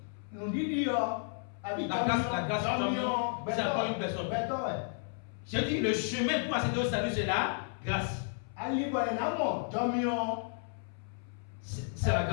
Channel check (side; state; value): right; silent; 56 dB below the other